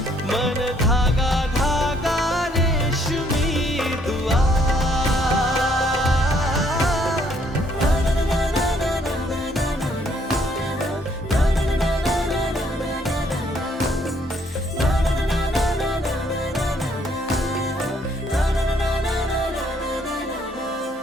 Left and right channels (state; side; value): normal; both; correlation 0.67